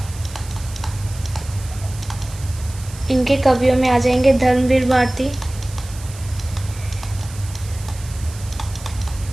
इनके कवियों में आ जाएंगे धर्मवीर भारती,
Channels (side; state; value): right; noise; hiss, 17 dB below the sound